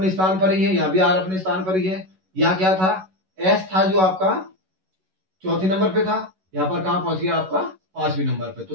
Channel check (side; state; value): left; late; 11 ms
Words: स्थान पर ही है, यहाँ भी R अपने स्थान पर ही है। यहाँ क्या था, S था जो आपका चौथे नंबर पे था, यहाँ पर कहाँ पहुंच गया आपका 5वें नंबर पे। तो